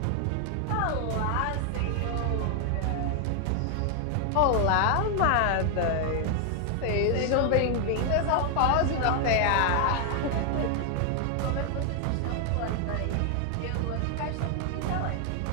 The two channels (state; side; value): different; both; correlation 0.00